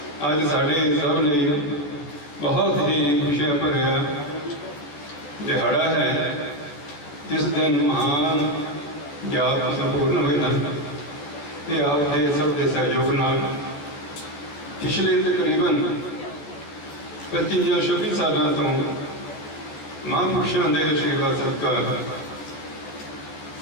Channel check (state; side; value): late; right; 14 ms